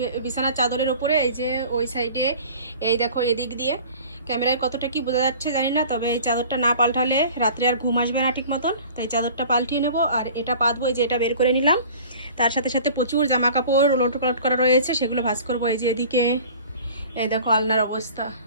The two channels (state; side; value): inverted; both; correlation -0.44